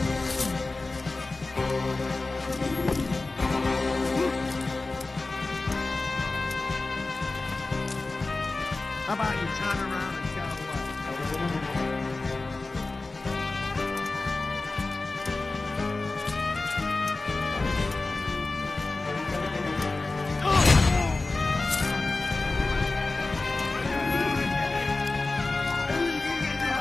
How about you turn around and go away?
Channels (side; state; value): right; quieter; 3.4 dB